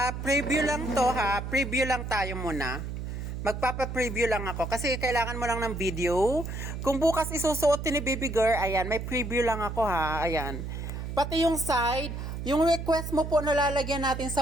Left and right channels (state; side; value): noise; right; hum, 6 dB below the sound